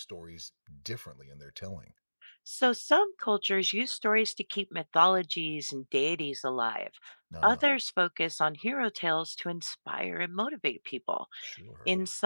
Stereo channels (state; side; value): inverted; both; correlation -1.00